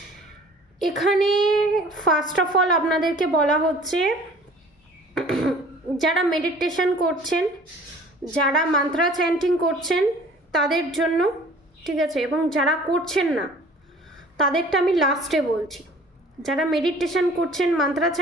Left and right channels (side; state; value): both; normal; correlation 0.49